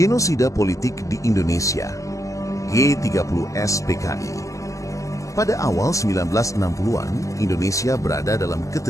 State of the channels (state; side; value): late; right; 0.16 ms